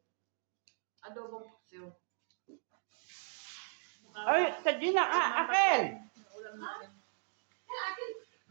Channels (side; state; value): left; silent; digital silence